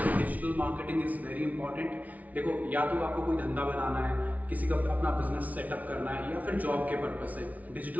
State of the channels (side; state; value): left; late; 0.072 ms